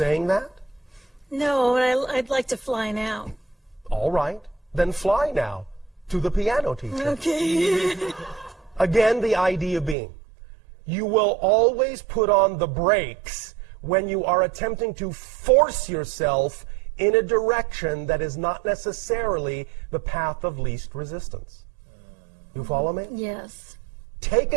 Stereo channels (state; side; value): drops out; left; at 10.0 s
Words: that? No, I'd like to fly now. All right, then fly now to the piano teacher. Okay. Again, the idea being, you will always put on the brakes when you are attempting to force yourself in a direction that is not necessarily the path of least resistance. You follow me? Yes. Take